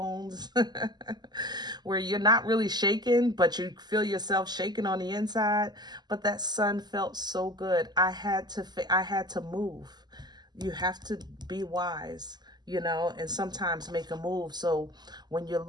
where you're not really shaking, but you feel yourself shaking on the inside. But that sun felt so good. I had to move. You have to be wise. you know, and sometimes make a move. So when you're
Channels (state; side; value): late; left; 0.20 ms